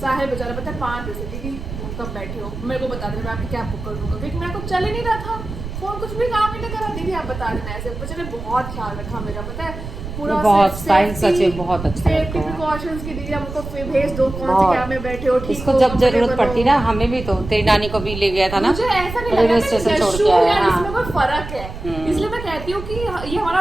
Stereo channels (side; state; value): right; noise; rumble, 9 dB below the sound